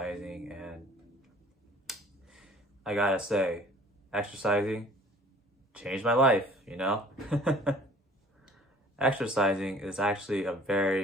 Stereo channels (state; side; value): normal; both; correlation 0.52